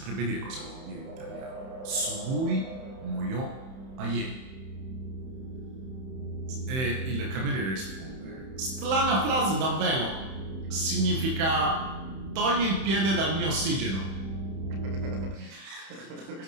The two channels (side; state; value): left; late; 31 ms